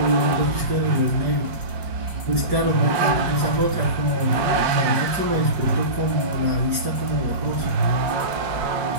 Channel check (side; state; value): left; late; 5.5 ms